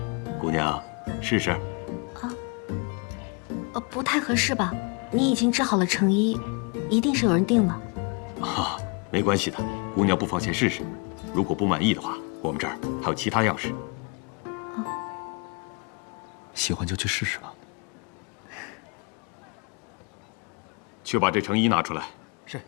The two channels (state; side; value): quieter; right; 33.6 dB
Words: 姑娘试试。不太合适吧？你已经织好了成衣，一定是有人订了。啊，没关系的，姑娘不妨先试试。如果不满意的话，我们这儿还有其他样式。喜欢就去试试吧。去把这成衣拿出来。是。